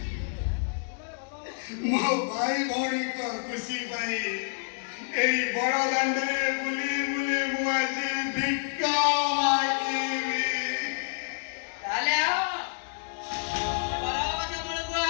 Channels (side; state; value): right; silent; digital silence